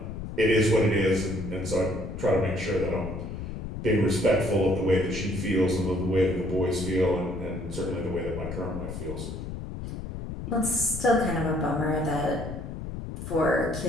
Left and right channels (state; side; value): noise; left; rumble, 7 dB below the sound